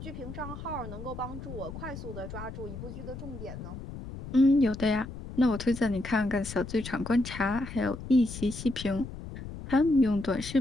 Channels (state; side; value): noise; left; rumble, 10 dB below the sound